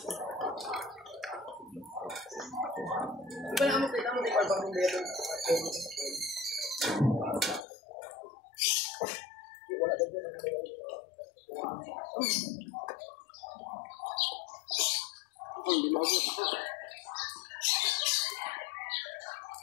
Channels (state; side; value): drops out; right; at 7.7 s